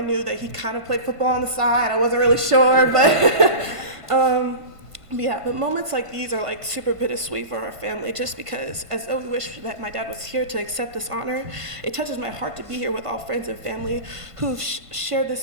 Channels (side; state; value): left; late; 1.5 ms